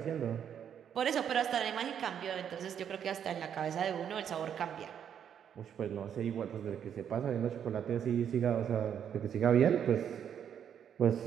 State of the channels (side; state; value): left; quieter; 8.7 dB